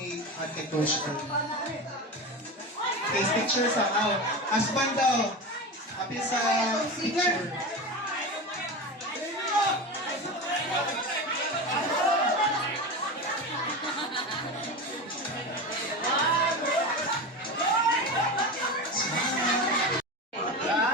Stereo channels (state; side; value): normal; both; correlation 0.24